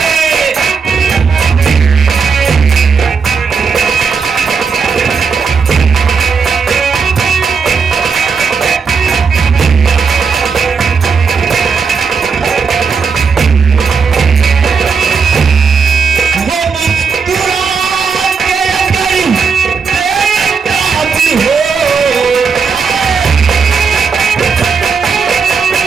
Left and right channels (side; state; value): left; quieter; 5.6 dB